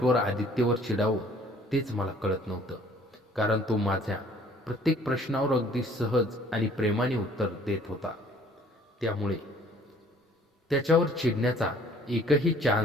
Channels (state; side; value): normal; both; correlation 0.57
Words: आदित्यवर चिडावं तेच मला कळत नव्हतं, कारण तो माझ्या प्रत्येक प्रश्नावर अगदी सहज आणि प्रेमाने उत्तर देत होता. त्यामुळे त्याच्यावर चिडण्याचा एकही